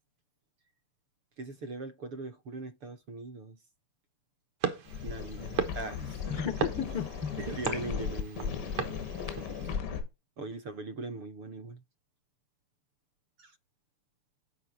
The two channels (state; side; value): late; left; 6.9 ms